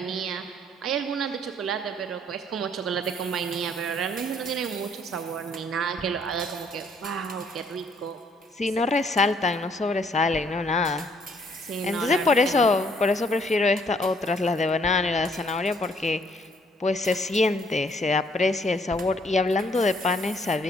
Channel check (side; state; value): both; normal; correlation 0.65